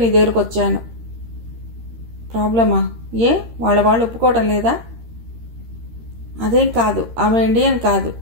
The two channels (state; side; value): late; left; 13 ms